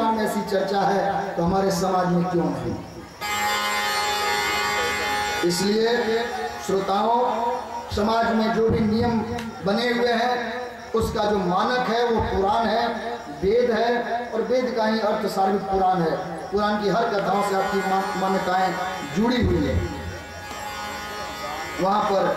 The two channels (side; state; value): both; identical; correlation 1.00